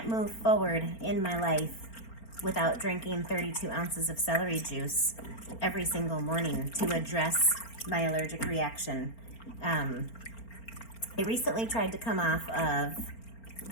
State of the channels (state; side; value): late; right; 4.4 ms